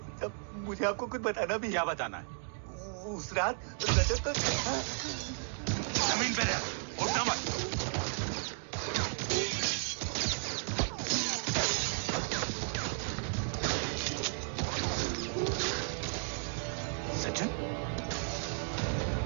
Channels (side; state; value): left; silent; 55 dB below the other